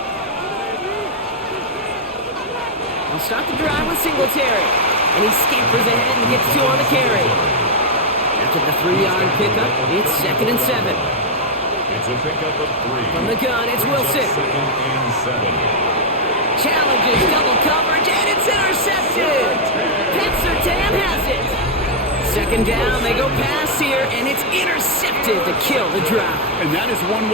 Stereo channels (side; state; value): both; normal; correlation 0.00